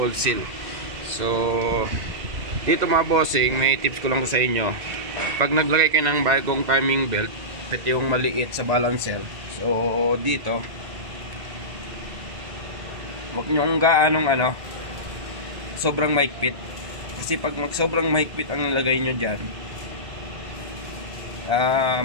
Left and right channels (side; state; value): left; late; 2.0 ms